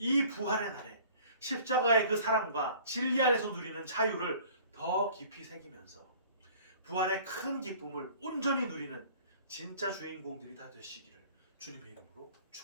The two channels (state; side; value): inverted; both; correlation -0.49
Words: 부활의 날에 십자가의 그 사랑과 진리 안에서 누리는 자유를 더 깊이 새기면서 부활의 큰 기쁨을 온전히 누리는 진짜 주인공들이 다 되시기를 주님의 이름으로